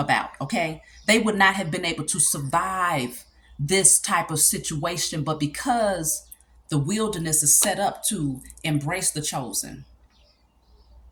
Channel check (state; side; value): identical; both; correlation 1.00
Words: okay? They would not have been able to survive this type of situation, but because the wilderness is set up to embrace the chosen,